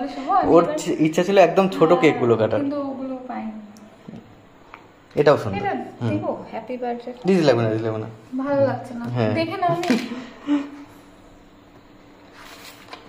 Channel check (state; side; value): identical; both; correlation 1.00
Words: শুভ। ওর ইচ্ছা ছিল একদম ছোট কেক গুলো কাটার, কিন্তু ওগুলো পাইনি। এটাও সুন্দর। এটা দেব হ্যাপি বার্থডে। দিদি লাগবে না, দিদি লাগবে না, ভালো লাগছে না। হ্যাঁ। দেখে নাও নি।